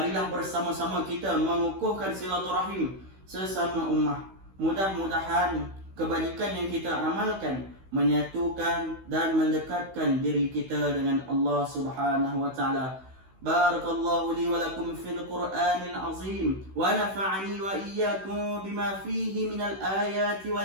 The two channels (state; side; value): late; left; 16 ms